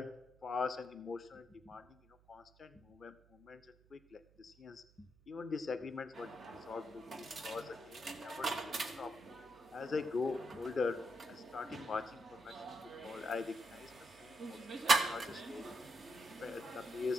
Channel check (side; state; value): right; noise; hum, 28 dB below the sound